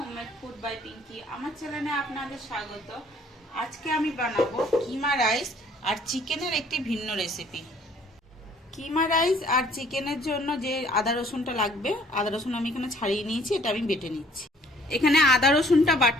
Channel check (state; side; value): normal; both; correlation 0.58